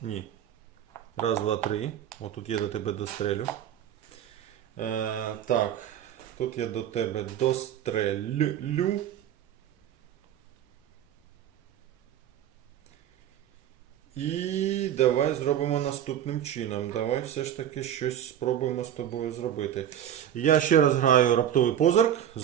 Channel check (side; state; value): left; quieter; 10.5 dB